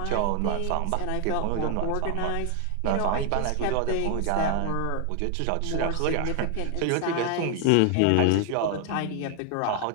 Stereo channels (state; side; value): different; both; correlation 0.00